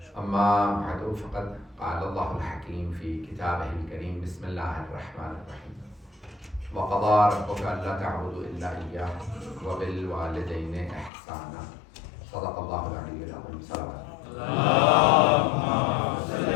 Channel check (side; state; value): right; drops out; at 11.1 s